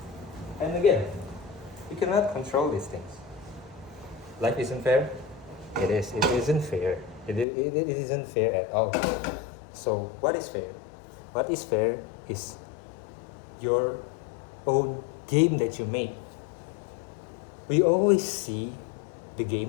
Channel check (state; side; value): drops out; right; at 7.5 s